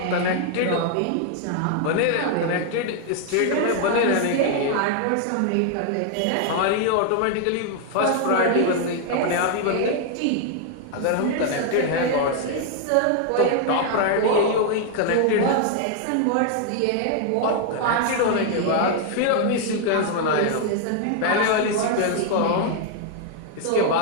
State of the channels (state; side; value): different; both; correlation 0.00